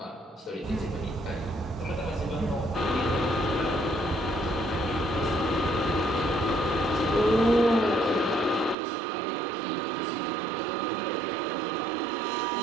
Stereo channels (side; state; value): left; drops out; at 8.8 s